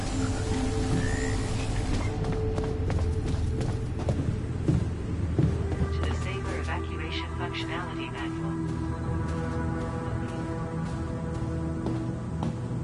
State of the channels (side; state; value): both; identical; correlation 1.00